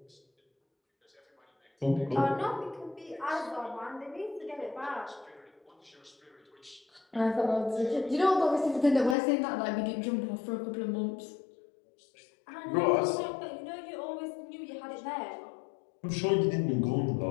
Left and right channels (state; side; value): drops out; right; at 9.2 s